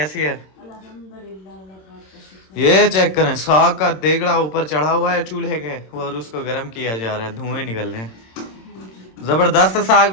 है? ये चेक करें, साग का देगड़ा ऊपर चढ़ा हुआ है चूल्हे के, और उसको गर्म किया जा रहा है, धुएं निकल रहे हैं। जबरदस्त साग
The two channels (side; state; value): right; late; 26 ms